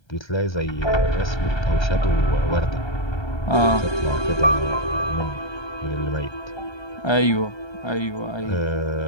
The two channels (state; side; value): late; right; 1.3 ms